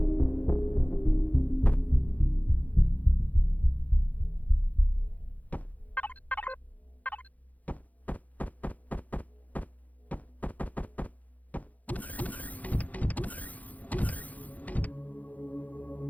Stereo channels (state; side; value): late; right; 0.077 ms